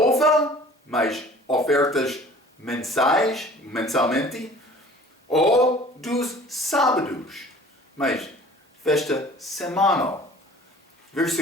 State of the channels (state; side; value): normal; both; correlation 0.47